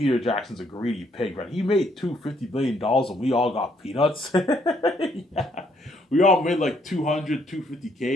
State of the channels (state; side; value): normal; both; correlation 0.69